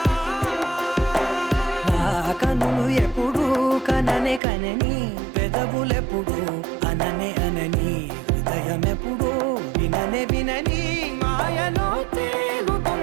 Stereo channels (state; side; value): drops out; left; at 4.4 s